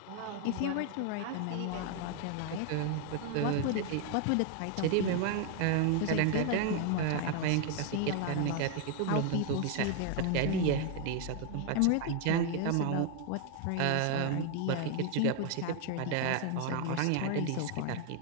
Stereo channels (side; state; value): both; different; correlation 0.00